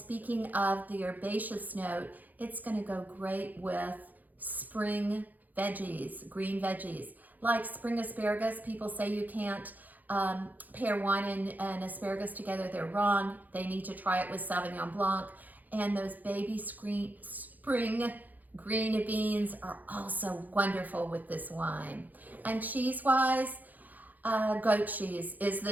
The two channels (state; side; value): late; left; 0.082 ms